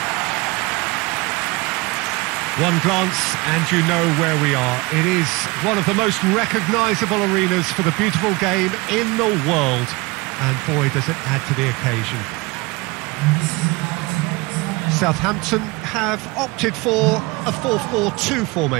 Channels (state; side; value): quieter; left; 24.3 dB